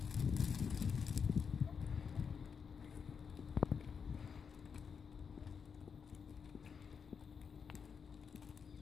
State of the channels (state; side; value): quieter; right; 6.3 dB